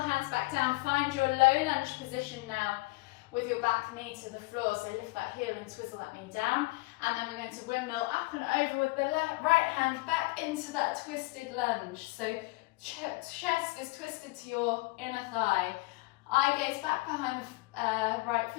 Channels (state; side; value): quieter; right; 24.1 dB